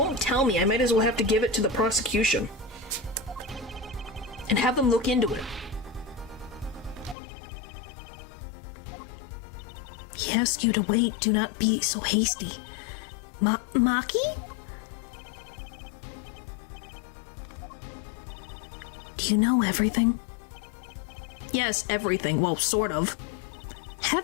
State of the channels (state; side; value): drops out; right; at 7.2 s